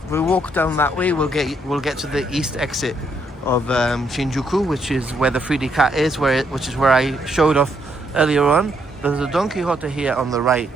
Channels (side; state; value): both; normal; correlation 0.74